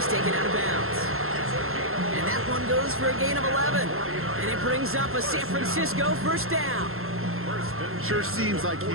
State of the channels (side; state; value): left; late; 0.62 ms